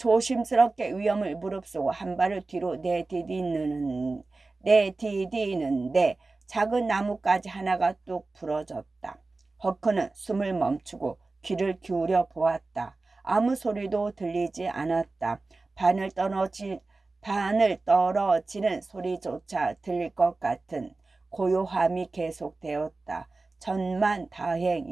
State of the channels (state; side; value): quieter; left; 3.5 dB